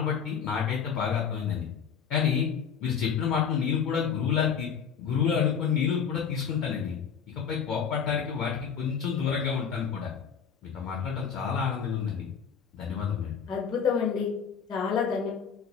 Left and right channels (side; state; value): right; quieter; 7.0 dB